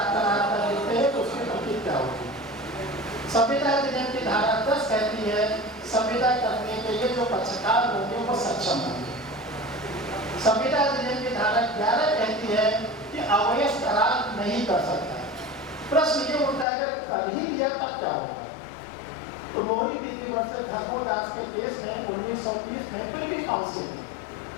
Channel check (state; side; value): drops out; right; at 16.7 s